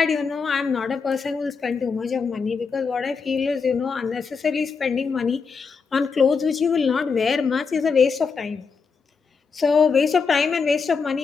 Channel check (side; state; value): right; quieter; 5.3 dB